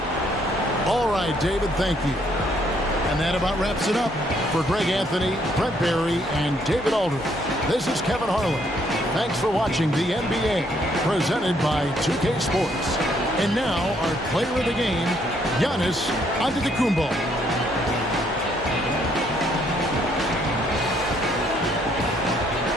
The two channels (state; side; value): normal; both; correlation 0.69